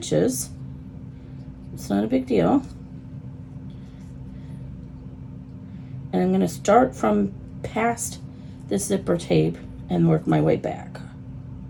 It's not a big deal. And I'm going to start from past the zipper tape and work my way back.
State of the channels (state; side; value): identical; both; correlation 1.00